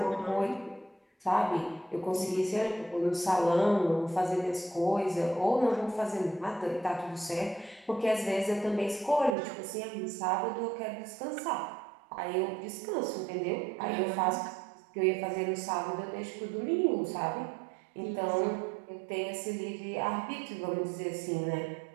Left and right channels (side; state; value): left; drops out; at 9.3 s